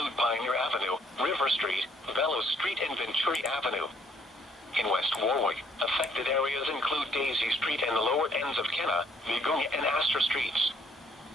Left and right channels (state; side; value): normal; both; correlation 0.65